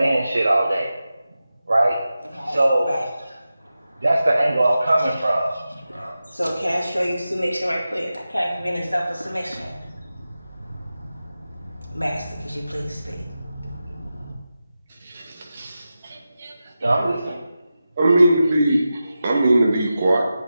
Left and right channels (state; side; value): inverted; both; correlation -0.93